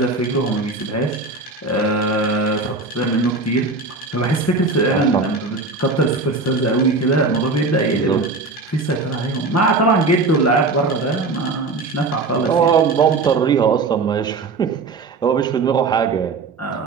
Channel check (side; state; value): left; quieter; 3.7 dB